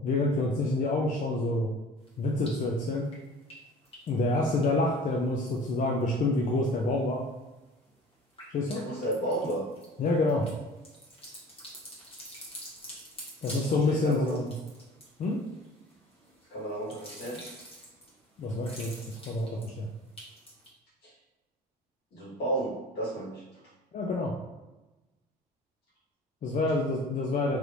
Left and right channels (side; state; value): both; normal; correlation 0.44